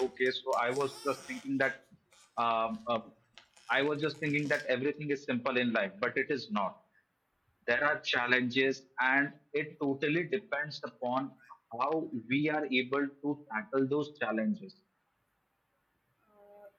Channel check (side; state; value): both; identical; correlation 1.00